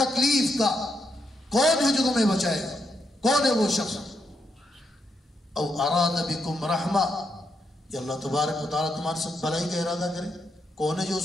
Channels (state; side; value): normal; both; correlation 0.80